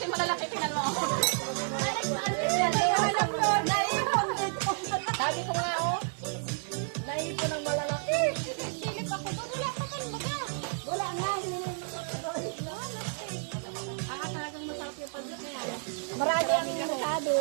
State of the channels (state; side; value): silent; left; 57 dB below the other